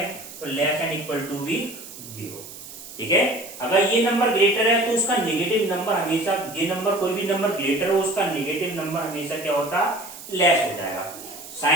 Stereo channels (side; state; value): right; noise; hiss, 14 dB below the sound